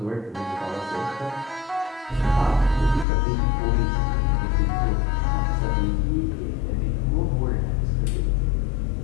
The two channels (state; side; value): drops out; right; at 3.1 s